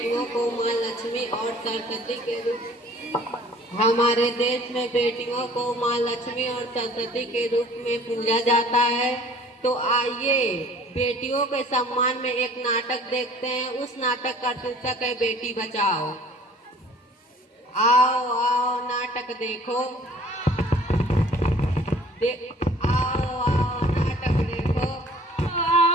को माँ लक्ष्मी और सरस्वती के रूप हमारे देश में बेटियों को माँ लक्ष्मी और सरस्वती के रूप में पूजा जाता है। तो आइए बेटियों के सम्मान में एक नाटक देखते हैं। उस नाटक का शीर्षक है बेटी बचाओ। आओ आओ नाटक देखो। आओ आओ नाटक देखो।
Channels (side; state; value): both; normal; correlation 0.51